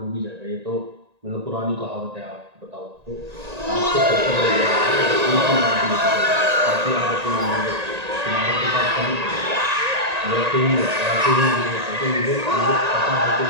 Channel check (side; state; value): left; late; 1.8 ms